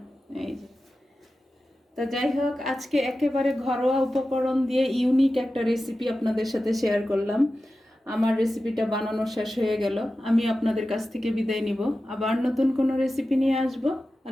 এই যে তো যাই হোক, আজকে একেবারে ঘরোয়া উপকরণ দিয়ে ইউনিক একটা রেসিপি আপনাদের সাথে শেয়ার করলাম। আমার রেসিপিটা বানানো শেষ হয়ে গেল। আমি আপনাদের কাছ থেকে বিদায় নিব, আবার নতুন কোনো রেসিপি নিয়ে আসবো।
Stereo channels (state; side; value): normal; both; correlation 0.93